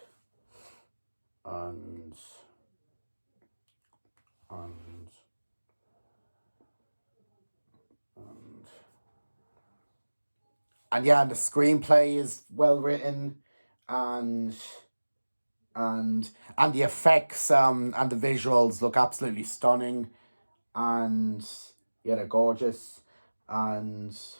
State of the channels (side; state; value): both; inverted; correlation -1.00